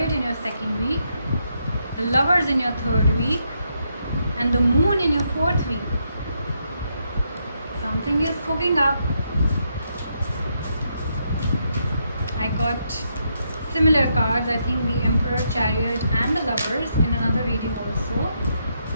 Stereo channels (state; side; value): inverted; both; correlation -0.79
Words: in your second week, the Lovers in your third week, and the Moon in your fourth week. Something is cooking up. I got similar cards, I think the Emperor, Chariot and the Lovers in another reading also.